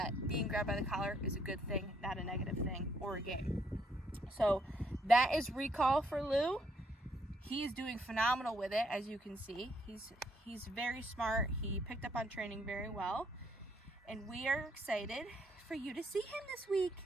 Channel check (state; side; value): normal; both; correlation 0.71